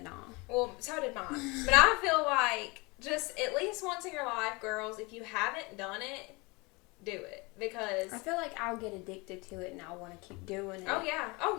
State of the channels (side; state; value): right; quieter; 26.4 dB